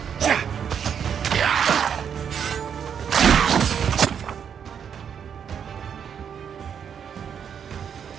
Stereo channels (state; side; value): quieter; left; 7.8 dB